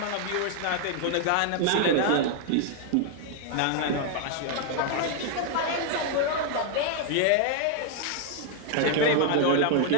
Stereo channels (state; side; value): different; both; correlation 0.00